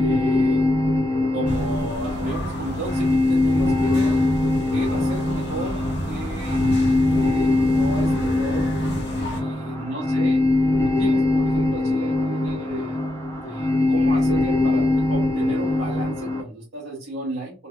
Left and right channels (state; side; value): normal; both; correlation 0.85